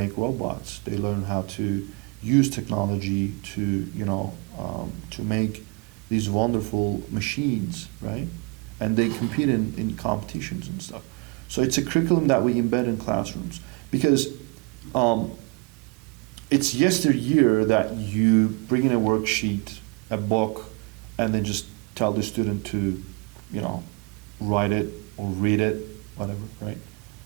robots. They learn how to use technology to, you know, to make these wonderful machines, right? And they compete in competitions and stuff. So it's a curriculum that we embed in classrooms, because it's yesteryear that you bring in a worksheet, a book, and then just tell the student to, you know, write it or read it, whatever, right?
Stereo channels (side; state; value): left; quieter; 29.9 dB